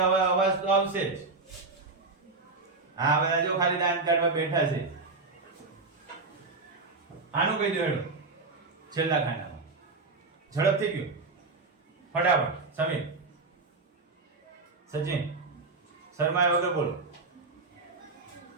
હવે અવાજ તો આવશે જ. હા બધા જો ખાલી દાન કાઢવા બેઠા છે. આનું કહી દો હેડો છેલ્લા ખાનામાં. ઝડપથી ગયું ફટાફટ. સમીર, સચિન, શર્મા વગર બોલો.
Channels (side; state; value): left; quieter; 3.8 dB